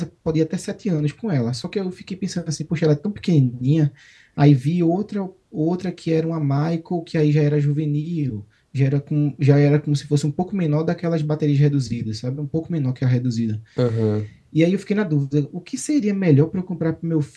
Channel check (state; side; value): identical; both; correlation 1.00